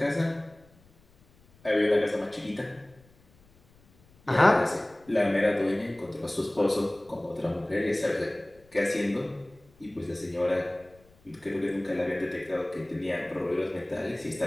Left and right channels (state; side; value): noise; left; rumble, 30 dB below the sound